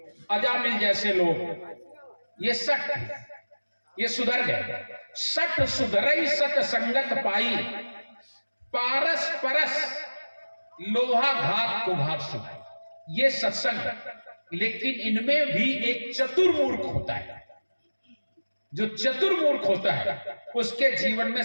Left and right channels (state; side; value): inverted; both; correlation -1.00